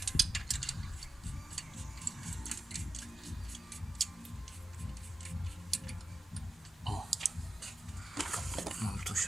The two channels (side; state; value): both; normal; correlation 0.92